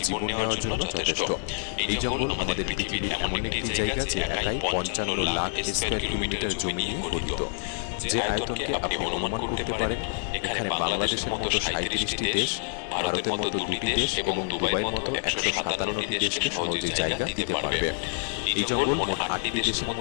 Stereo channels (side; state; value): right; silent; digital silence